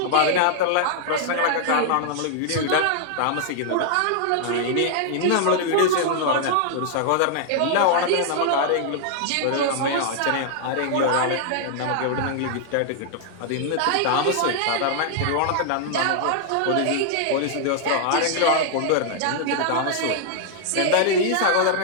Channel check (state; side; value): different; both; correlation -0.01